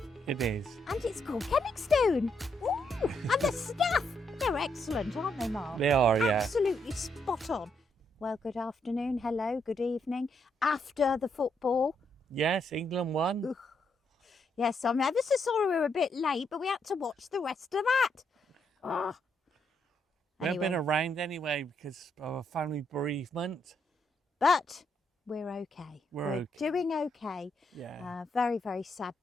It is. And it's called Kenningstone. Ooh, and the staff, they're excellent, aren't they, Mark? They are, yeah. Absolutely spot on. Well, good afternoon, hello, good evening. After the football. Yes, England won. Ugh. Yes, I'm ever so sorry we were a bit late, but we had to watch the rest of that. Oh. We haven't been around anyway because of a family bereavement. But we're okay. We're okay. Doing okay. Yeah. Very, very sad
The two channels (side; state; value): both; normal; correlation 0.77